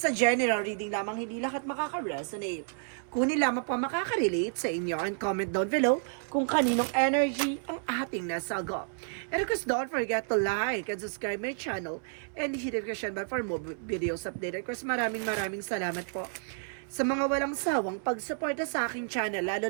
a general reading lamang, hindi lahat makaka-resonate. Kunin lamang po makaka-relate sa inyo and comment down below kung kaninong energy ang ating nasagot. And of course, don't forget to like and subscribe my channel and hit the notification bell for more videos updated. Of course, maraming salamat po sa mga walang sawang pagsuporta sa aking channel,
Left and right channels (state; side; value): silent; left; 57 dB below the other